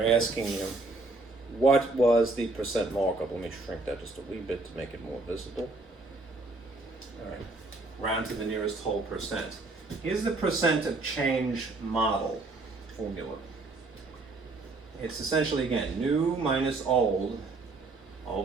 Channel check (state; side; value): quieter; left; 3.2 dB